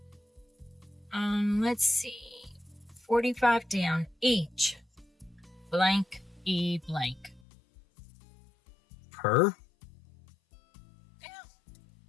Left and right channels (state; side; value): drops out; right; at 7.4 s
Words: Let's see. 45 down. Each. Blank. E blank. Per? Yeah.